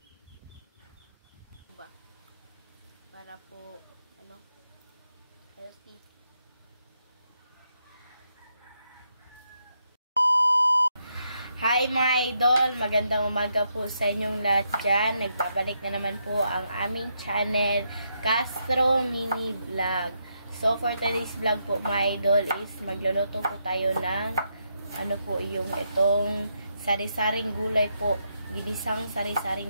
Para po, healthy. Hi mga idol! Magandang umaga po sa inyong lahat dyan. Nagbabalik na naman po ang aming channel, Castro Mini Vlog. So for today's vlog po mga idol is magluluto po tayo ng yung itong sari-saring gulay po. Ginisang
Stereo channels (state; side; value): inverted; both; correlation -0.80